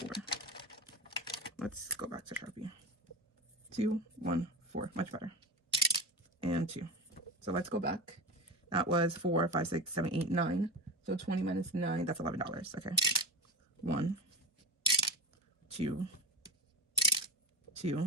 Let's go back to Sharpie. 2, 1, 4, much better. And 2. So let's go back. That was 4, 5, 6, 7, 8, 9. So 20 minus 9, that's $11. Okay. 1, 2,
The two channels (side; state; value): both; normal; correlation 0.21